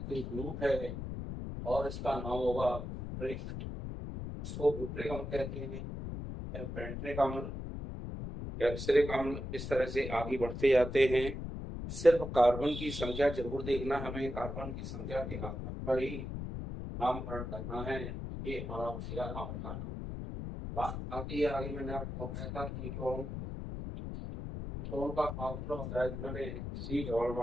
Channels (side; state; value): left; noise; rumble, 6 dB below the sound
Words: ग्रुप है और इसका नाम होगा ब्यूट्रिक। इसको ब्यूट्रिक अम्ल कहते हैं। पेंट्रिक अम्ल, कैप्सरिक अम्ल, इस तरह से आगे बढ़ते जाते हैं। सिर्फ कार्बन की संख्या जरूर देखना, हमें कार्बन की संख्या के आधार पर ही नामकरण करना है। ये हमारा होशियार नाम का नाम। बात आती है आगे, मैंने आपको बताया था कीटोन। कीटोन का फार्मूला होता है जिसमें C डबल